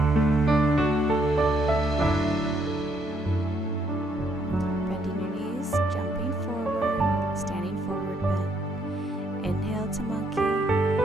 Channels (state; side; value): normal; both; correlation 0.72